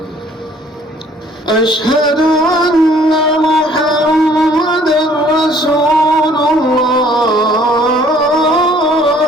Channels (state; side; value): normal; both; correlation 0.58